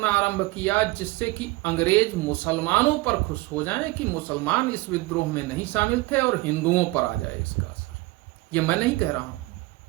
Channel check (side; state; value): left; quieter; 21.5 dB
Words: आरंभ किया जिससे कि अंग्रेज मुसलमानों पर खुश हो जाएं कि मुसलमान इस विद्रोह में नहीं शामिल थे और हिंदुओं पर आ जाए इसका असर। ये मैं नहीं कह रहा हूं,